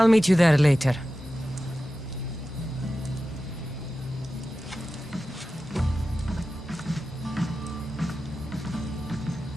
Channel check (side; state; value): both; normal; correlation 0.93